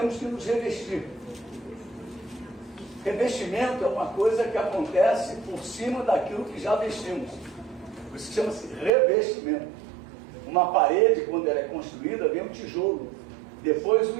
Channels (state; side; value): drops out; left; at 8.9 s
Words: que nos revestir. Revestimento é uma coisa que acontece por cima daquilo que já vestimos. Por isso chama-se revestimento. Uma parede, quando ela é construída, vem um tijolo, depois o